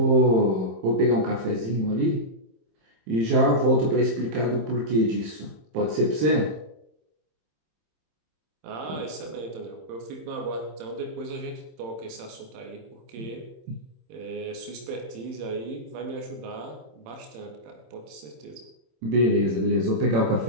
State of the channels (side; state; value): left; late; 27 ms